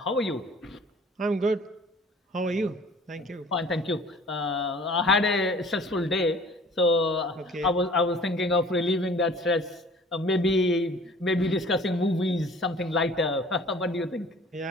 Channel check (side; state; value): both; normal; correlation 0.50